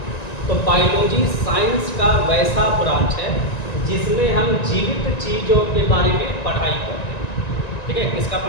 तो बायोलॉजी साइंस का वैसा ब्रांच है जिसमें हम जीवित चीज़ों के बारे में पढ़ाई करते हैं। ठीक है, किसका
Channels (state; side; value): late; right; 1.9 ms